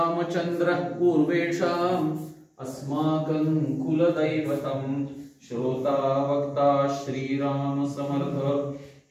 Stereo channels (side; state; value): both; identical; correlation 1.00